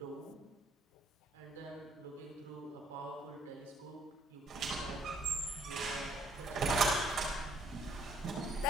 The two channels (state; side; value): normal; both; correlation 0.65